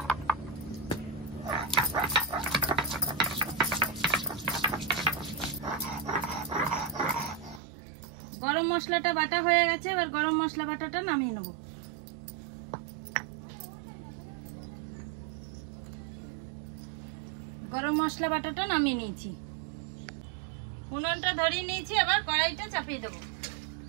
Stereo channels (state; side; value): drops out; left; at 7.6 s